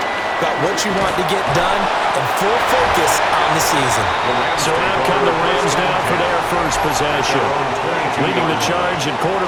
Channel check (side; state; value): both; identical; correlation 1.00